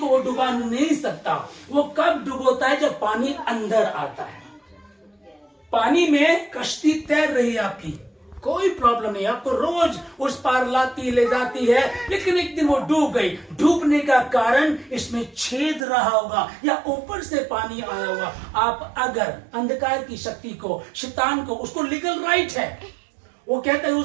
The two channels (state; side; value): drops out; left; at 15.9 s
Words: वो डुबा नहीं सकता। वो कब डुबोता है? जब पानी अंदर आता है। पानी में कश्ती तैर रही है आपकी, कोई प्रॉब्लम नहीं, आपको रोज उस पार लाती ले जाती है, लेकिन एक दिन वो डूब गई। डूबने का कारण इसमें छेद रहा होगा या ऊपर से पानी आया होगा। आप अगर अंधकार की शक्ति को, शैतान को, उसको लीगल राइट है, वो कहता है,